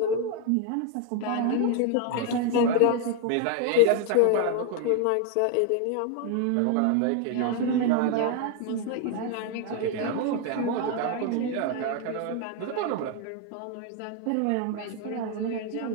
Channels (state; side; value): different; both; correlation 0.00